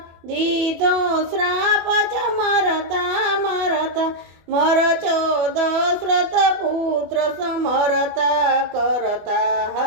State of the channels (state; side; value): late; left; 25 ms